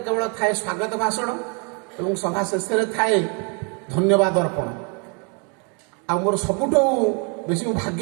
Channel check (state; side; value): quieter; left; 36.1 dB